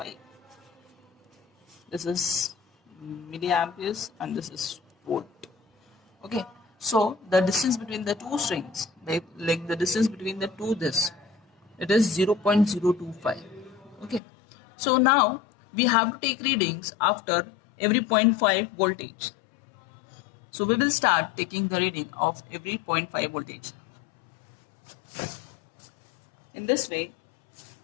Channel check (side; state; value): right; drops out; at 14.2 s